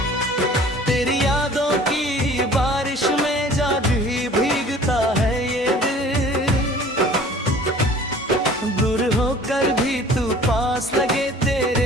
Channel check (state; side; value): normal; both; correlation 0.48